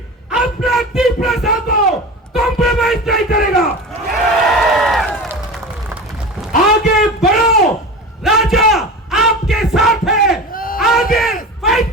अपना तिपरासा को कॉम्प्रोमाइज नहीं करेगा। आगे बढ़ो, राजा आपके साथ है। आगे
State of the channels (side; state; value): both; normal; correlation 0.31